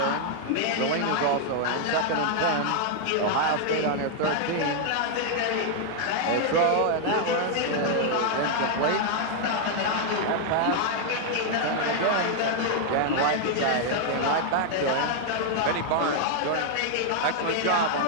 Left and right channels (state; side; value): different; both; correlation 0.00